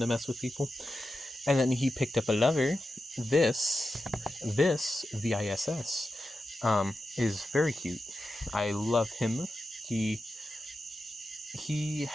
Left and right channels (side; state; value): both; normal; correlation 0.90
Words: mess with people. And then he picked up a lover. This VISS, is very cute. I love him. He